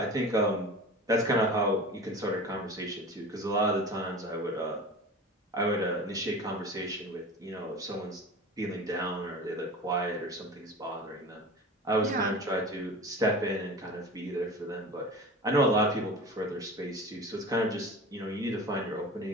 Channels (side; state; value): both; normal; correlation 0.34